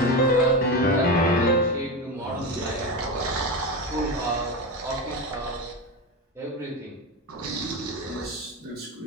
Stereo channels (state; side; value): normal; both; correlation 0.18